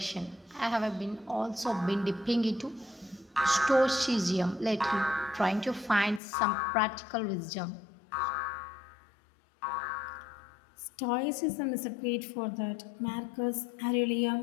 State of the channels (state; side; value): drops out; right; at 6.2 s